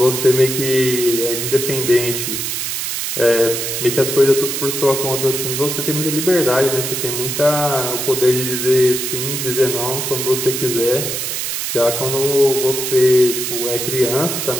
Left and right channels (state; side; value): noise; right; hiss, 3 dB below the sound